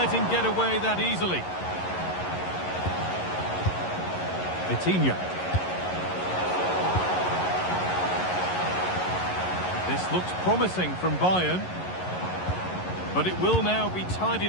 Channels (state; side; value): late; right; 11 ms